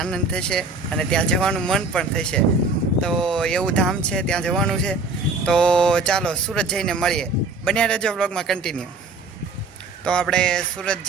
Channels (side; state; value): left; quieter; 3.7 dB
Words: થશે અને ત્યાં જવાનું મન પણ થશે. તો એવું ધામ છે, ત્યાં જવાનું છે. તો ચાલો સુરત જઈને મળીએ. બન્યા રહેજો વ્લોગમાં કન્ટિન્યુ. તો આપણે સુરત